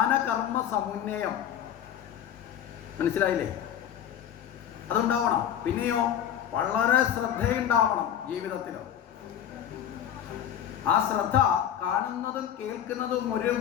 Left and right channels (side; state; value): right; quieter; 9.9 dB